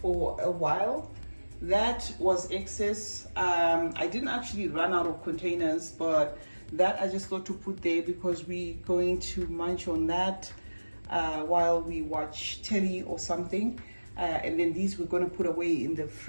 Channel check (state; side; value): inverted; both; correlation -1.00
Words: for a while. That was excess. I didn't actually run out of containers, but that I just thought to put there because we're going to munch on that while we watch telly or something. And then these we're going to put away in the